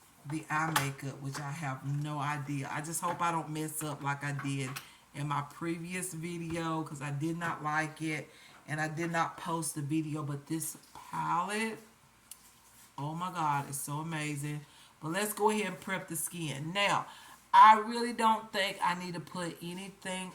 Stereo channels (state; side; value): identical; both; correlation 1.00